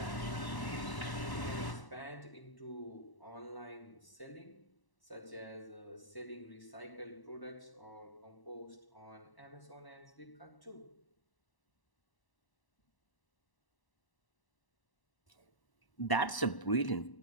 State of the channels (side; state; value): right; late; 1.0 ms